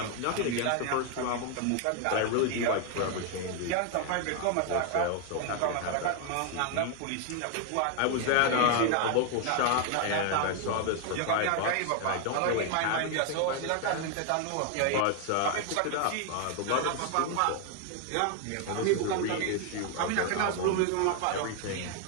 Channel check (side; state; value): both; different; correlation 0.00